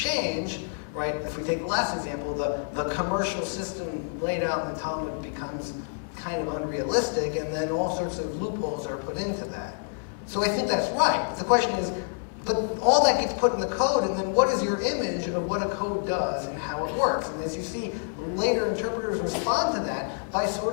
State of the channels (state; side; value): silent; right; digital silence